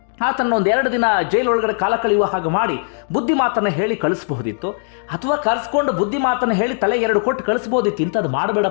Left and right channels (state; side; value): silent; right; digital silence